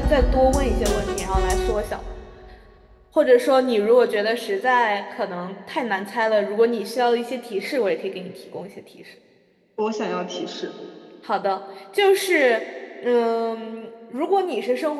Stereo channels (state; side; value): identical; both; correlation 1.00